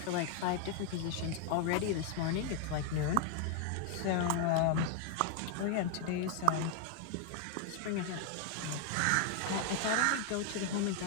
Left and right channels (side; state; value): both; different; correlation 0.00